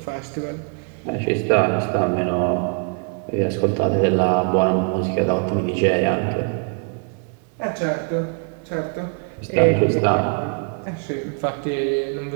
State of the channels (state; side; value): quieter; left; 39.4 dB